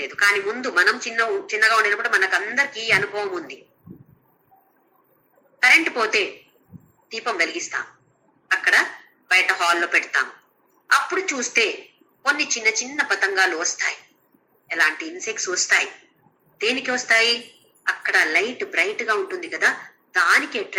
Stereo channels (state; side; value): identical; both; correlation 1.00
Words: కానీ ముందు మనం చిన్నగా ఉండేటప్పుడు మనకు అందరికీ అనుభవం ఉంది. కరెంటు పోతే దీపం వెలిగిస్తాం, అక్కడ బయట హాల్లో పెడతాం. అప్పుడు చూస్తే కొన్ని చిన్న చిన్న పతంగాలు వస్తాయి, ఎలాంటి ఇన్సెక్ట్స్ వస్తాయి. దేనికి వస్తాయి? అక్కడ లైట్ బ్రైట్ గా ఉంటుంది కదా, దానికి